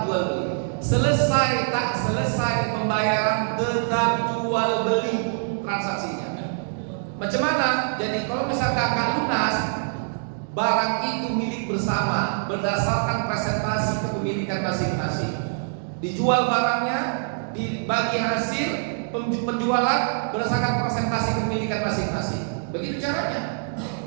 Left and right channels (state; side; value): silent; left; digital silence